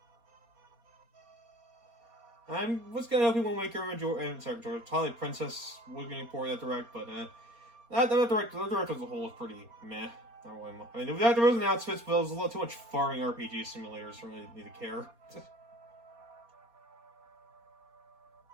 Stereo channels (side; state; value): left; late; 4.3 ms